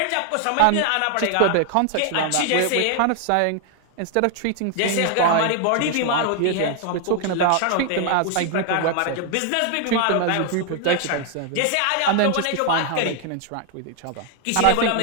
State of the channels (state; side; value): different; both; correlation 0.00